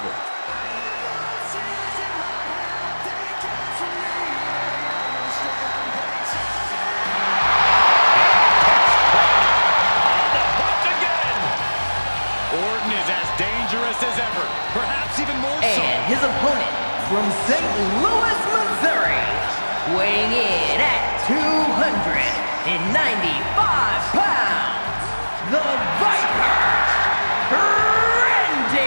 Orton is as dangerous as ever, perhaps even more so. And his opponent from St. Louis, Missouri, weighing in at 295 pounds, the Viper,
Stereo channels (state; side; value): inverted; both; correlation -1.00